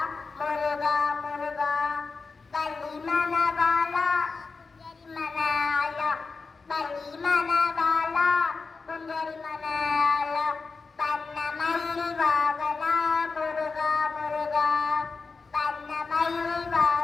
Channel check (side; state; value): right; quieter; 4.4 dB